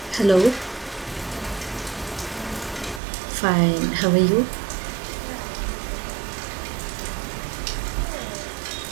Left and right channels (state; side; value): drops out; left; at 3.0 s